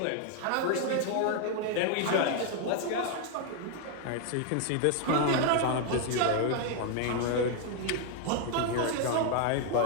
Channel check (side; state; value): both; different; correlation 0.00